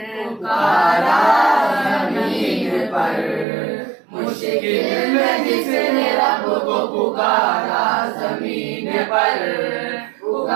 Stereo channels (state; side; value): drops out; left; at 3.5 s